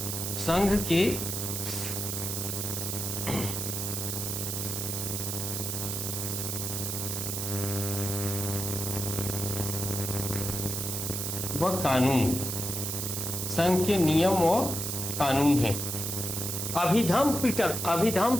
संघ के वह कानून, संघ के नियम और कानून है। अभिधम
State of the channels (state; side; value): noise; right; hiss, 3 dB below the sound